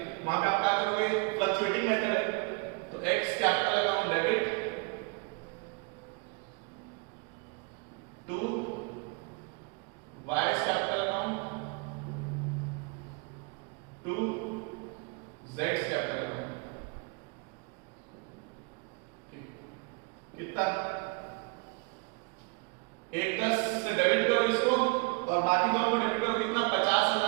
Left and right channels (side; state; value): left; quieter; 32.2 dB